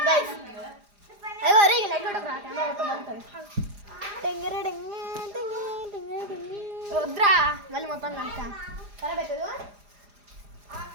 గైస్. అయ్యో అరే లైట్ కొట్టకురా కెమెరా మొత్తం బాగుంటుంది. వద్దురా మళ్ళీ మొత్తం కనుక ఖరాబ్ అవుతుంది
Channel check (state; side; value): late; left; 4.9 ms